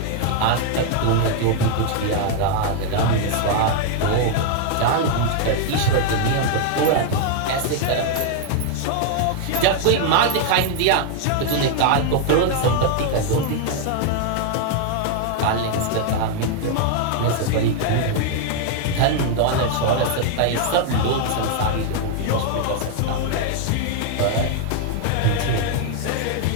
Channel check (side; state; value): both; different; correlation 0.00